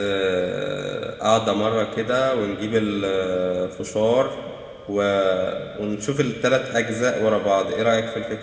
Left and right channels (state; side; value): identical; both; correlation 1.00